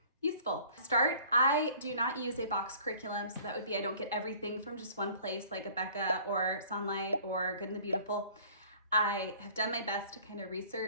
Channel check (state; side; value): inverted; both; correlation -0.51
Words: useful. To start, I do not use a box curriculum, so that would be I don't get everything from just one place like Abeka or Sunlight or Good and the Beautiful. I have done my best to kind of